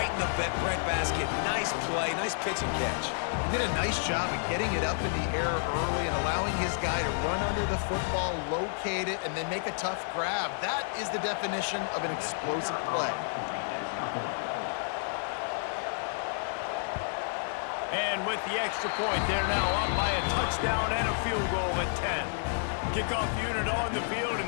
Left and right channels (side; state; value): right; silent; digital silence